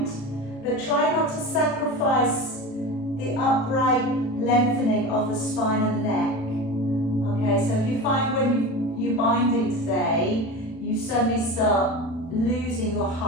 but try not to sacrifice the upright lengthening of the spine and the neck. Okay, so if you find when you're binding today, you suddenly start losing your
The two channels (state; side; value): late; right; 36 ms